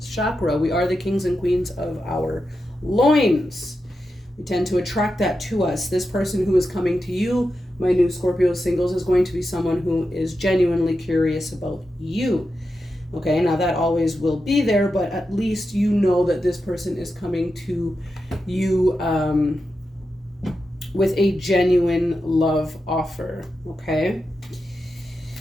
chakra. We are the kings and queens of our loins. We tend to attract that to us. This person who is coming to you, my new Scorpio singles, is going to be someone who is genuinely curious about you. Okay, now that always will be there, but at least you know that this person is coming to you with a genuine love offer, okay?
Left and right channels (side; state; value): both; normal; correlation 0.89